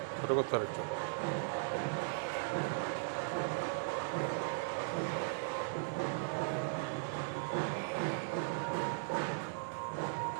ছোটো করতে হবে একটু।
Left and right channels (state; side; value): silent; left; digital silence